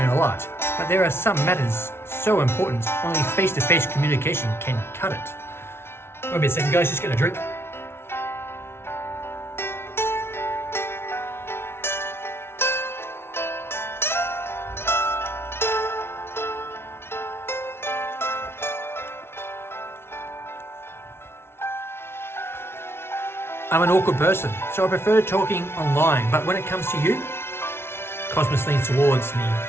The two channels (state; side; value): late; right; 0.12 ms